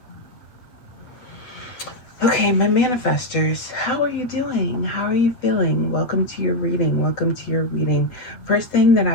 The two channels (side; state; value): right; late; 8.1 ms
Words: Okay, my manifestors, how are you doing? How are you feeling? Welcome to your reading. Welcome to your reading. First thing that